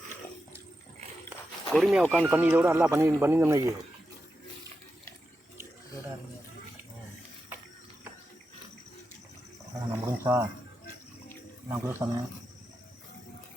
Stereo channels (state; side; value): normal; both; correlation 0.89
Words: பொறுமையாக உட்காந்து பண்ணி இதை விட நல்லா பண்ணியிருந்தோம்னா நான் முடிஞ்சா நான் கூட சொன்னேன்.